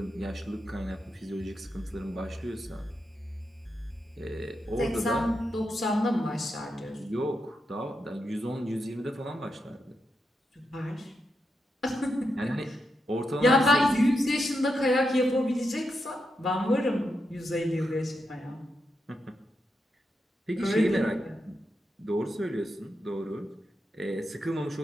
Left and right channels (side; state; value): both; normal; correlation 0.85